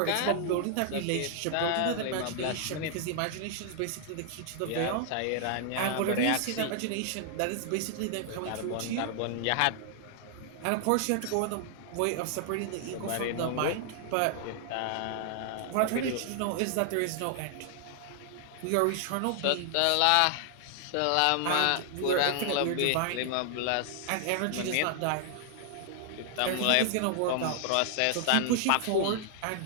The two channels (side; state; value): both; different; correlation 0.00